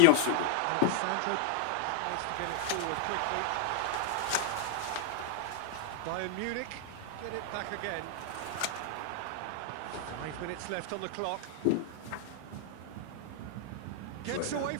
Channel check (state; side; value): different; both; correlation -0.01